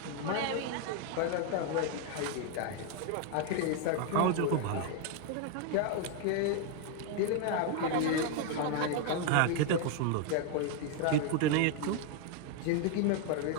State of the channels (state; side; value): different; both; correlation 0.01